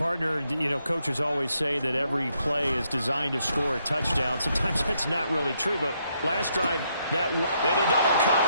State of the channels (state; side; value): inverted; both; correlation -0.76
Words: you know, coaches always say that every play is designed to score a touchdown. Sometimes that's not really true, but last drive, that into double